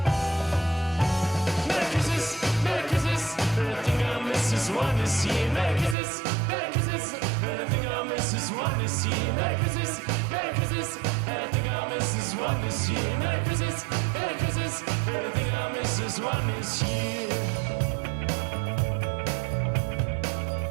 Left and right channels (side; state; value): left; drops out; at 6.0 s